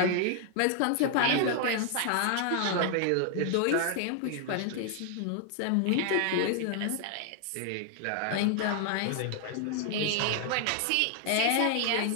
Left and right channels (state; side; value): different; both; correlation 0.00